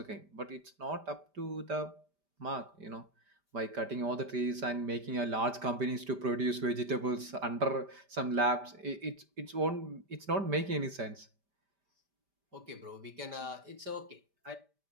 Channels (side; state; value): left; late; 5.1 ms